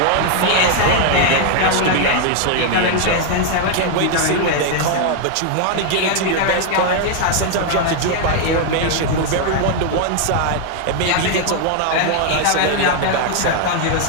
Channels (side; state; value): both; different; correlation 0.00